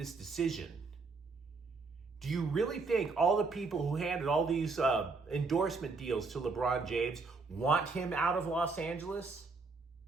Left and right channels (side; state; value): left; quieter; 4.1 dB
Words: decision. Do you really think all the people who handed all these endorsement deals to LeBron James want him out of Los Angeles?